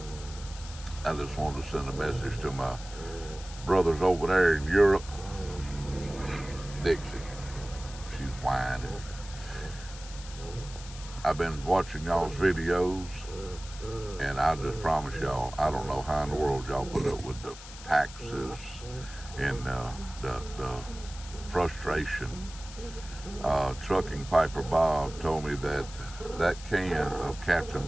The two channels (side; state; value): left; noise; hiss, 15 dB below the sound